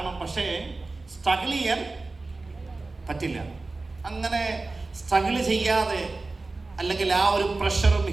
പക്ഷേ സ്ട്രഗിൾ ചെയ്യാൻ പറ്റില്ല. അങ്ങനെ സ്ട്രഗിൾ ചെയ്യാതെ അല്ലെങ്കിൽ ആ ഒരു പ്രഷറും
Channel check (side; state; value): left; quieter; 3.4 dB